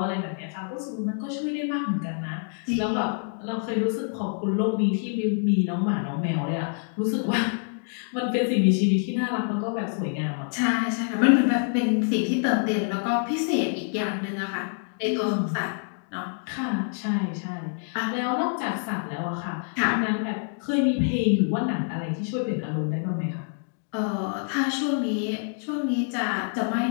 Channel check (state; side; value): silent; right; 59 dB below the other